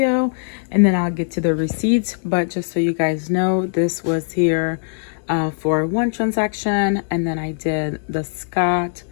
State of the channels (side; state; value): right; silent; digital silence